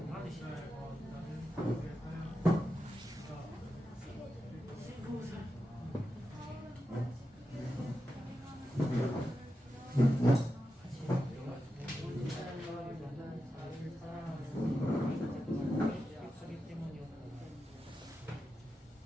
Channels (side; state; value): both; normal; correlation 0.89